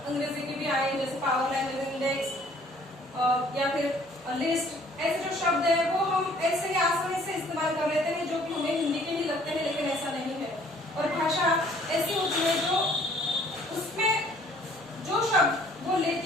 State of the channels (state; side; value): normal; both; correlation 0.58